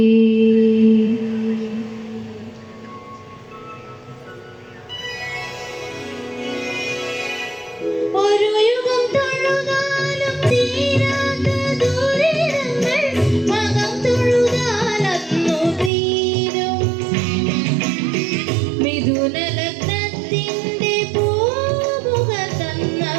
ഒരു യുഗം തൊഴുതാലും തീരാത്ത ദുരിതങ്ങൾ മകം തൊഴുതാലന്നു തീരും. മിഥുനലഗ്നത്തിന്റെ പൂമുഖ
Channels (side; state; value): left; drops out; at 15.9 s